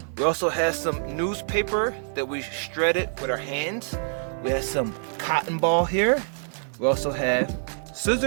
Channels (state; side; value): silent; left; digital silence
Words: We also have some newspaper that we shredded with our hands. We have some cotton ball here. We also have